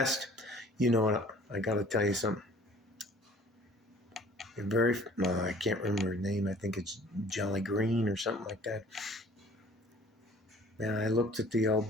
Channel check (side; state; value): both; normal; correlation 0.51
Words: You know what? I got to tell you something. I can't remember her name. I think it's Jolly Green or something like that. Man, I looked at the old